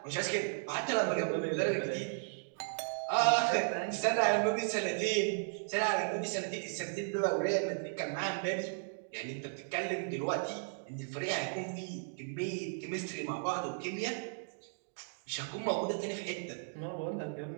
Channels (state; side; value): silent; left; digital silence